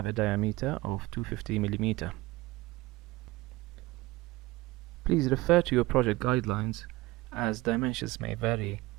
a diameter of 250 mm. Please refer to your project guidelines as dimensions may vary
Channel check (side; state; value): left; quieter; 20.3 dB